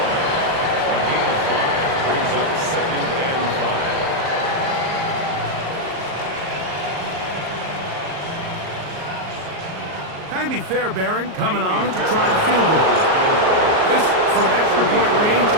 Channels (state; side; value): late; left; 38 ms